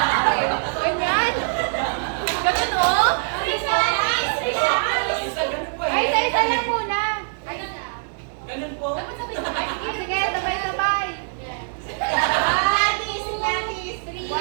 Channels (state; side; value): silent; left; 57 dB below the other